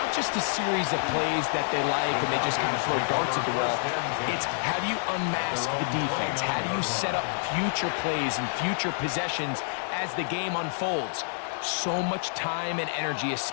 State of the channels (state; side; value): silent; right; digital silence